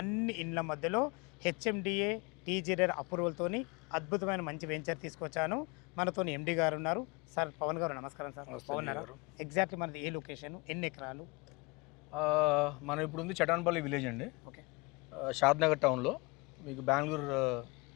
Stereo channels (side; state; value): right; quieter; 27.3 dB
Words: ఇండ్ల మధ్యలో హెచ్ఎండిఏ టీజీఆర్ అప్రూవల్తోని అద్భుతమైన మంచి వెంచర్ తీసుకొచ్చాను. మనతో ఎండి గారు ఉన్నారు. సార్ పవన్ గారు నమస్కారం సార్. బాగున్నారా? ఎగ్జాక్ట్లీ మనది ఏ లొకేషన్, ఎన్ని ఎకరాలు? మనం ఇప్పుడు ఉంది చటాన్పల్లి విలేజ్ అండి. ఓకే. షాద్ నగర్ టౌన్లో మీకు బెంగళూరు